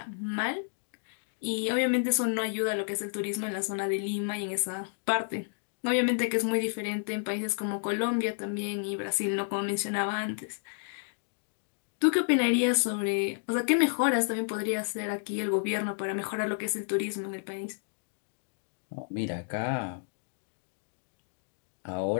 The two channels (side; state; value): right; silent; digital silence